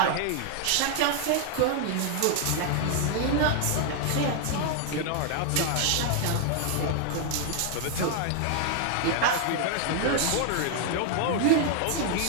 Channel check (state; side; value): different; both; correlation 0.00